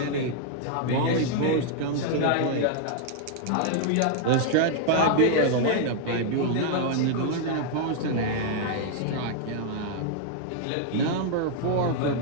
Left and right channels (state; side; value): different; both; correlation 0.00